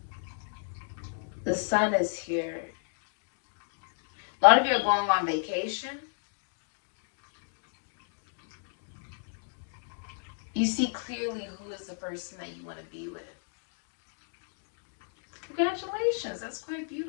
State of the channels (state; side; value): silent; right; digital silence